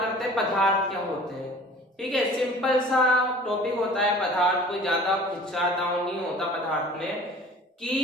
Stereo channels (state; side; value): normal; both; correlation 0.46